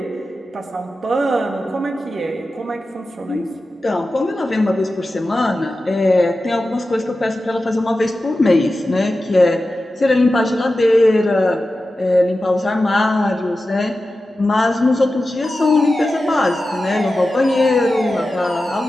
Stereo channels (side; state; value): both; normal; correlation 0.93